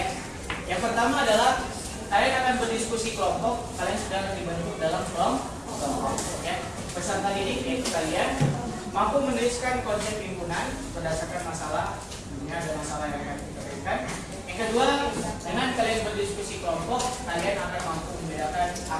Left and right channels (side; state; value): both; identical; correlation 1.00